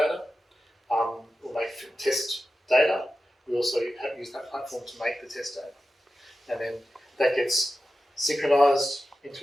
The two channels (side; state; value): both; normal; correlation 0.92